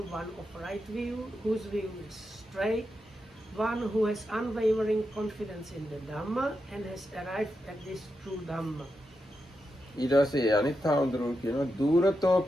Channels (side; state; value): both; normal; correlation 0.87